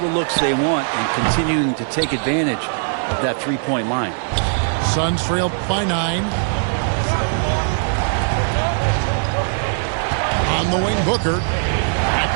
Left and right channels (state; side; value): silent; left; 66 dB below the other